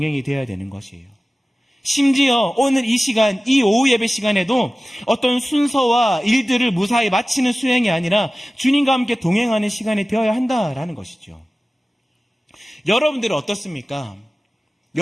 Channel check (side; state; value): both; normal; correlation 0.97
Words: 되어야 되는 것이에요. 심지어 오늘 이 시간, 이 오후 예배 시간에도 어떤 순서와 일들을 무사히 마치는 수행이 아니라 주님과 함께 동행하는 시간이 되어야 한다라는 것이죠. 여러분들은 어떻습니까?